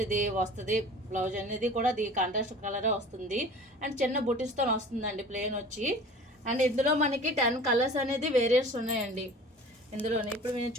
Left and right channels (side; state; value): both; normal; correlation 0.42